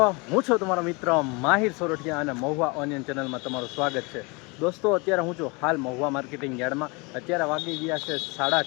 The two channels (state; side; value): quieter; right; 28.3 dB